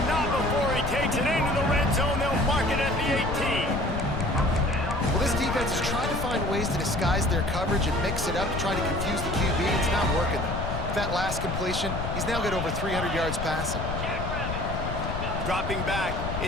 not before he takes it into the red zone. They'll mark it at the 18. Well, this defense is trying to find ways to disguise their coverage and mix it up to try to confuse the QB. It's not working, though. With that last completion, he's now got over 300 yards passing. Dropping back,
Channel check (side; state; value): left; noise; rumble, 4 dB below the sound